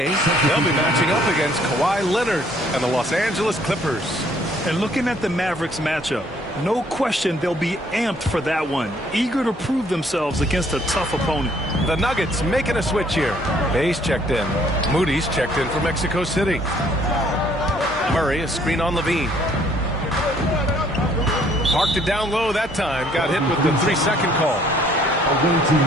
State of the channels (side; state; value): both; normal; correlation 0.62